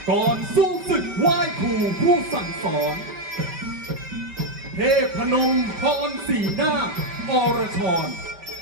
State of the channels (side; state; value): left; late; 5.2 ms